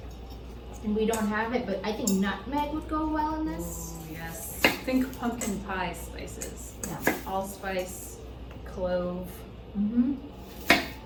And we don't have it, but I think nutmeg would go well in this. Ooh, yes. Think pumpkin pie spices. Yeah. Allspice, clove.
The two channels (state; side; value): identical; both; correlation 1.00